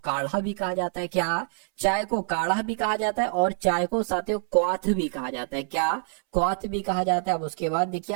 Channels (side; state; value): left; silent; 61 dB below the other